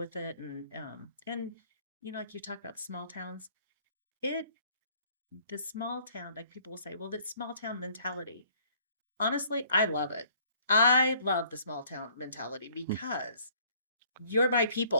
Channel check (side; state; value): both; inverted; correlation -0.59